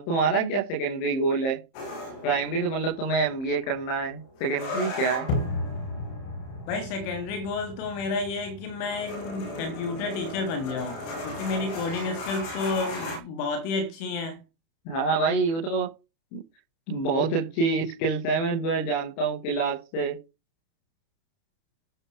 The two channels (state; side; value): late; right; 30 ms